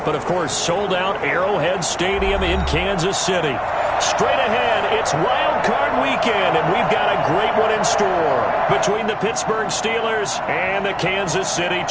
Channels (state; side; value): identical; both; correlation 1.00